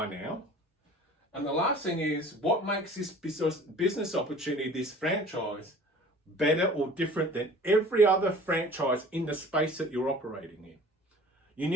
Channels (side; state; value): both; normal; correlation 0.46